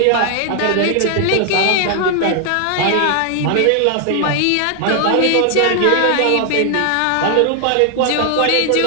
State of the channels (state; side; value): different; both; correlation 0.00